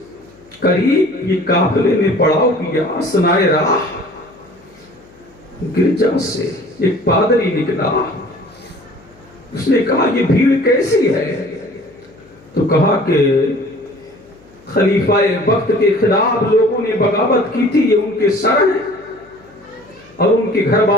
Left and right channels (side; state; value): left; noise; hum, 28 dB below the sound